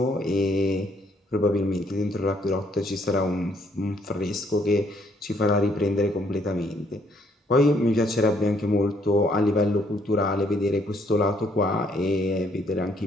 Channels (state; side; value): normal; both; correlation 0.68